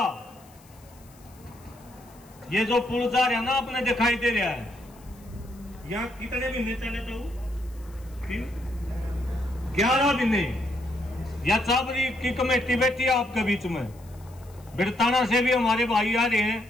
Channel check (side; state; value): left; noise; hiss, 27 dB below the sound